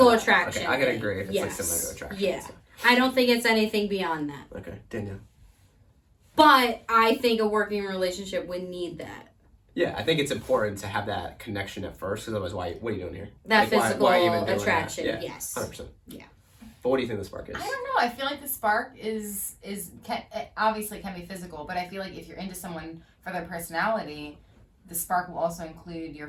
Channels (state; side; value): identical; both; correlation 1.00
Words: to that. attraction. Okay, I can agree if it's yes. like similar to attraction. Yeah, So. I don't think it's anything beyond that. Okay, Danielle. But I think a working relationship would need that. Yeah, I think it's important to have that connection at first, because otherwise, what are you doing here? That physical why even doing attraction. That? Yeah, Yes. 100%. Yeah. But what do you think the spark is? I don't know. I feel like the spark obviously can be physical, but I feel like if you're into someone for their personality, the spark will also include your